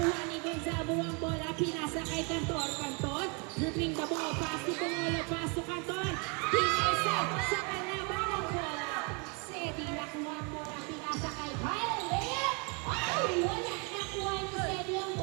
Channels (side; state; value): left; quieter; 33.4 dB